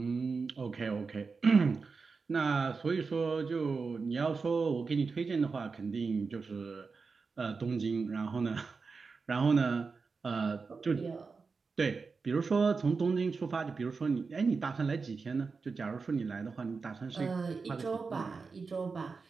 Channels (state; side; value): quieter; left; 4.7 dB